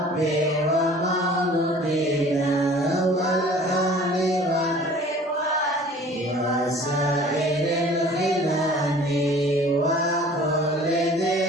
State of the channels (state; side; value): normal; both; correlation 0.48